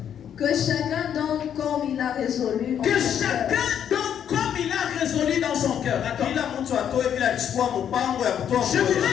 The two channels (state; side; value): quieter; right; 9.1 dB